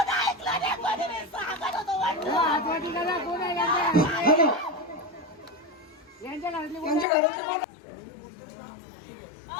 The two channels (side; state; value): right; drops out; at 7.1 s